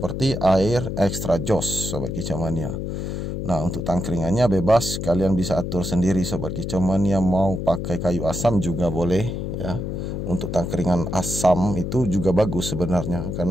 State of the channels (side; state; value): left; noise; hum, 4 dB below the sound